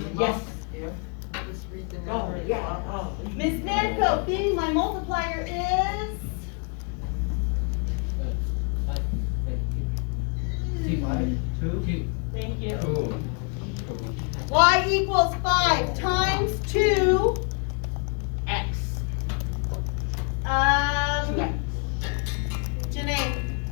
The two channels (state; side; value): quieter; right; 38.0 dB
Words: the Yes. box? Yeah. Just read the Oh, number in the yeah, box. oh. Ms. Manco, B, my multiplier is? Two. Thank you. Cool. Y equals 5 times 2, X. 2X. Janae,